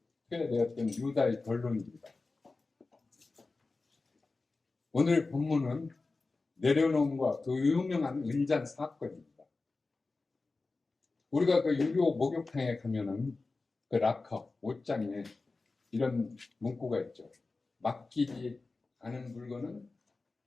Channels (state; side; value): quieter; right; 3.7 dB